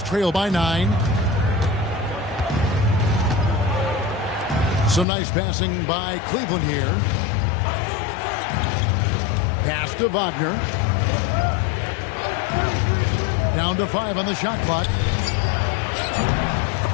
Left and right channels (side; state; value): right; drops out; at 5.1 s